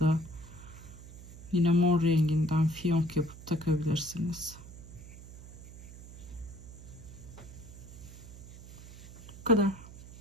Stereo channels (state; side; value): noise; right; hum, 15 dB below the sound